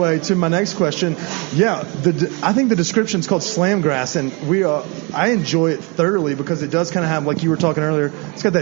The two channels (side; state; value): left; quieter; 30.3 dB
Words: to my next question. Yeah, I think the description's called slamgrass, and I enjoy it thoroughly because it does kind of have, like you were talking earlier, it's got